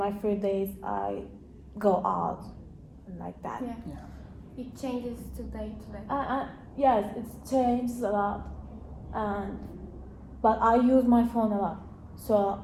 free days I go out and like that. Yeah. Yeah. It changes today to day. Yes, it's changed a lot, but I use my phone a lot. So,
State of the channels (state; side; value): identical; both; correlation 1.00